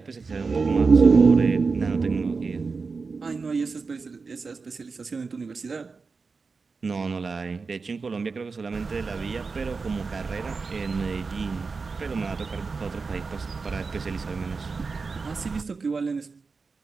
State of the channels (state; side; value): quieter; left; 4.5 dB